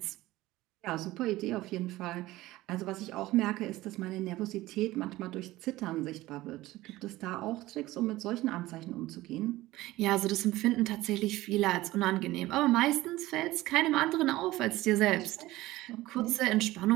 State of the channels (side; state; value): left; quieter; 17.5 dB